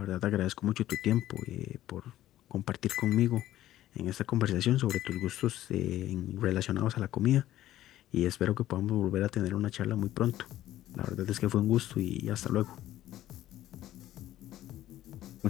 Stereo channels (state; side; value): quieter; right; 13.7 dB